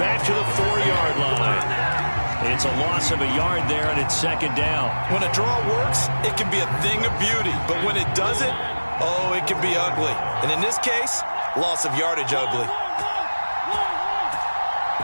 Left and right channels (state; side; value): inverted; both; correlation -1.00